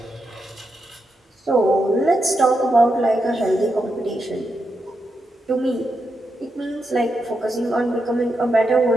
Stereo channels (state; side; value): normal; both; correlation 0.85